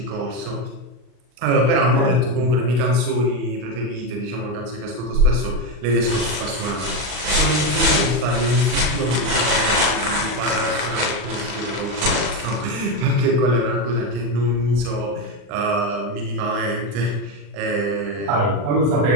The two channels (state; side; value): late; left; 40 ms